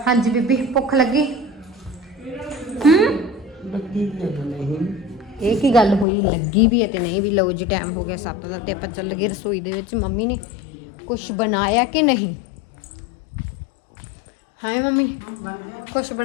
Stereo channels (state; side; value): drops out; right; at 6.1 s